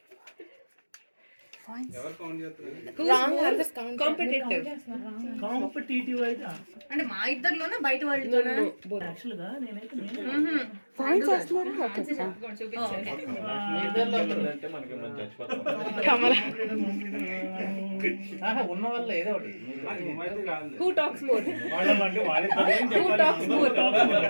Wrong answers competitive. Competitive అయితే అంటే మా ఇద్దరిలోనే బయట వాళ్ళతోనే యాక్చువల్ గా నేనైతే ఉన్న వల్ల ఏదో ఒకటి Who talks more? Who talks more?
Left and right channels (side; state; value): both; inverted; correlation -1.00